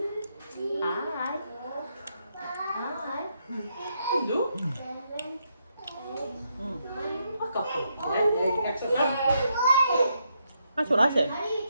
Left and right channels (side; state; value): both; inverted; correlation -0.79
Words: That's what I said.